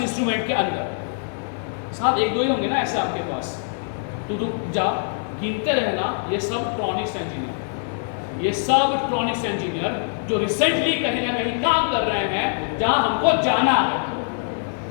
के अंदर। साथ 1-2 ही होंगे ना ऐसे आपके पास, तो रुक जा, गिनते रहना। ये सब इलेक्ट्रॉनिक्स इंजीनियर, ये सब इलेक्ट्रॉनिक्स इंजीनियर जो रिसेंटली कहीं ना कहीं काम कर रहे हैं जहां हमको जाना है।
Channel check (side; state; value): right; silent; 55 dB below the other